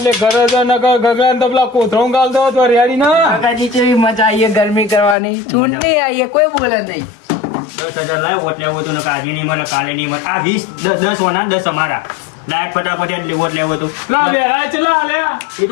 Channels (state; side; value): drops out; right; at 5.2 s